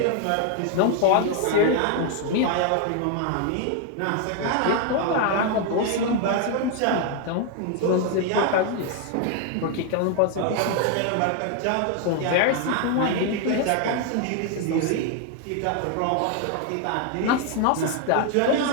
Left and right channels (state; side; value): different; both; correlation 0.00